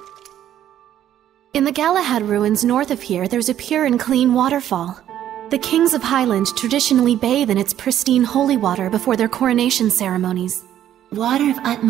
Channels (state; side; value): quieter; left; 11.3 dB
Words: In the Galahad ruins north of here, there's a pure and clean waterfall. The kings of Highland traditionally bathe in its pristine holy water before their coronation ceremonies. Water of